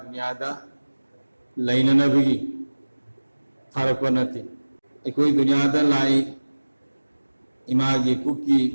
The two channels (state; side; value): inverted; both; correlation -1.00